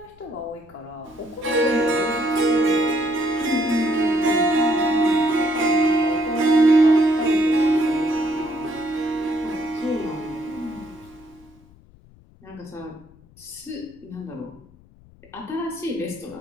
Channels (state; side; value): noise; left; rumble, 26 dB below the sound